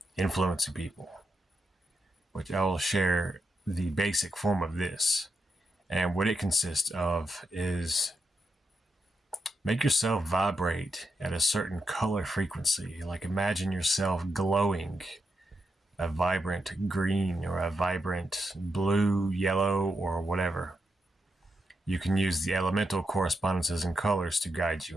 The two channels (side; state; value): both; normal; correlation 0.85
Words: influencing people, which I will share the basic form of this. And what it consists of is make yourself vibrate at a certain color frequency. Like imagine yourself glowing a vibrant green or a vibrant blue, yellow, or whatever. You can use the elemental correspondences and colors to guide